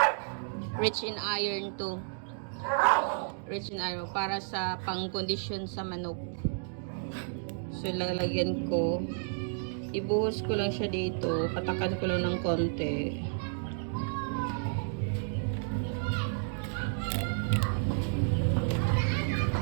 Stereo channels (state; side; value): silent; left; digital silence